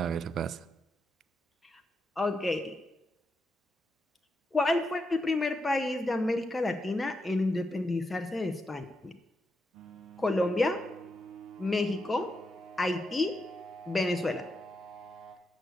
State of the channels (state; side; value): normal; both; correlation 0.84